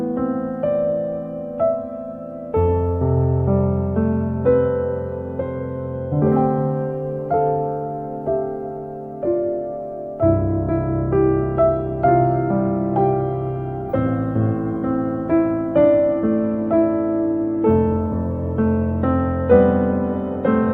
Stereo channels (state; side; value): identical; both; correlation 1.00